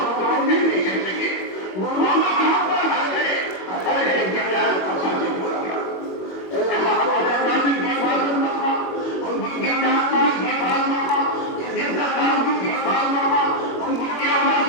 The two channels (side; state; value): right; late; 21 ms